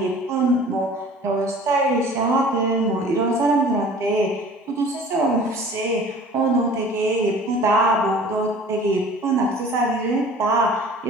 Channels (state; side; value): normal; both; correlation 0.46